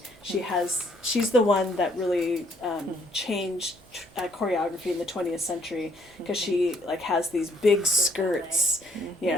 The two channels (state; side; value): normal; both; correlation 0.66